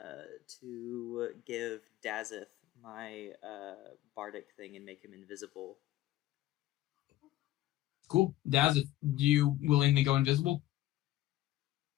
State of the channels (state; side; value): quieter; right; 14.9 dB